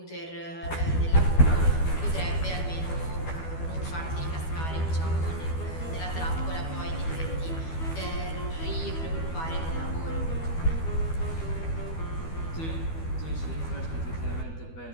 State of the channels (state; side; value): late; right; 12 ms